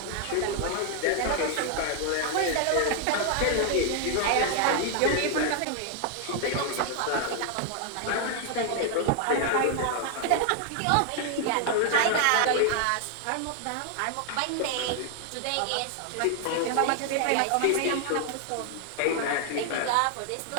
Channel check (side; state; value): both; different; correlation 0.00